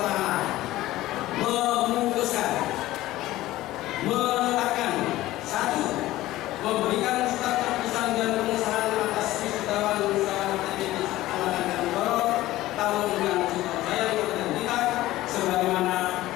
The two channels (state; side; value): quieter; right; 16.4 dB